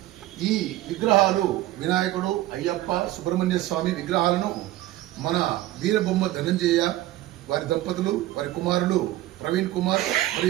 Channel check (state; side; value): quieter; left; 15.7 dB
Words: ఈ విగ్రహాలు వినాయకుడు, అయ్యప్ప, సుబ్రహ్మణ్య స్వామి విగ్రహాలను మన వీరబొమ్మ ధనంజయ వారి దంపతులు, వారి కుమారులు ప్రవీణ్ కుమార్